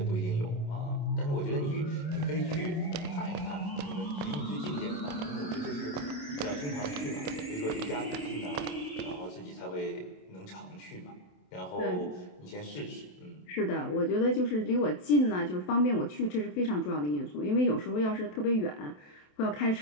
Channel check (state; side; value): late; right; 27 ms